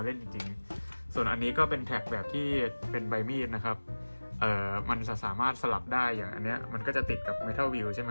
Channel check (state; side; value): inverted; both; correlation -1.00